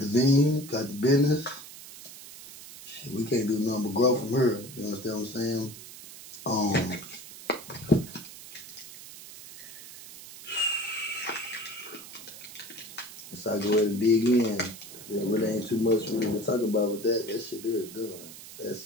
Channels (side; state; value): right; noise; hiss, 15 dB below the sound